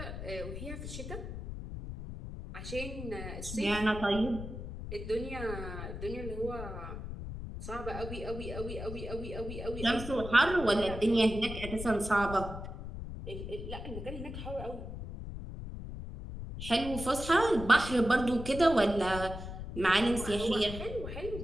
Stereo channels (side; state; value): left; noise; rumble, 8 dB below the sound